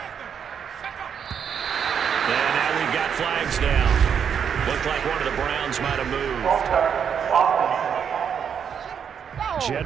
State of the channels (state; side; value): quieter; left; 7.6 dB